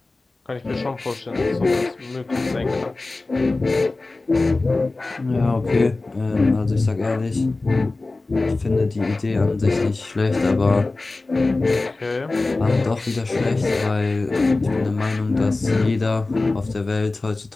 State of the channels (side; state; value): right; quieter; 3.3 dB